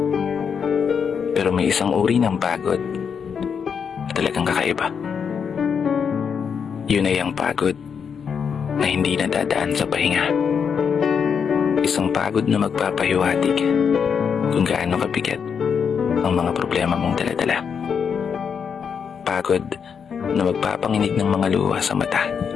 Pero may isang uri ng pagod na talagang kakaiba. Yun ay ang pagod na hindi nadadaan sa pahinga. Isang pagod na magpapahiwatig kung gaano kabigat ang mga problema mong daladala. Pagod na magpapanginig ng mga luha sa mata.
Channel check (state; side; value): quieter; right; 6.7 dB